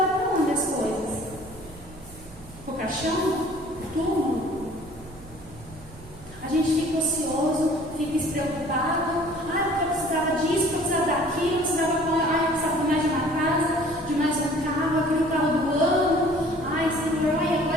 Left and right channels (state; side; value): noise; right; rumble, 20 dB below the sound